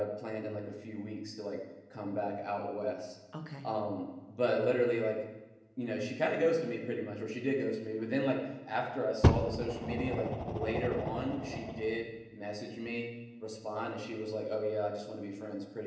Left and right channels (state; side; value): identical; both; correlation 1.00